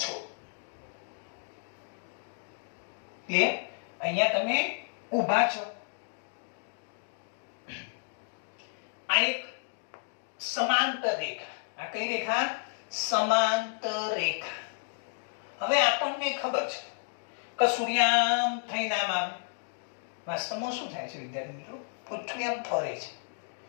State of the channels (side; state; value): right; silent; digital silence